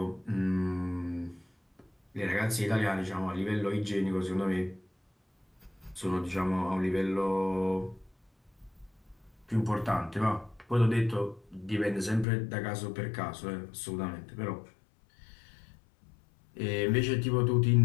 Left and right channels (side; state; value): right; drops out; at 12.2 s